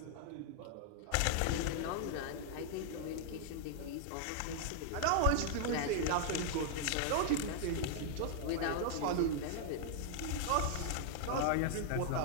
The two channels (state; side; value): different; both; correlation 0.00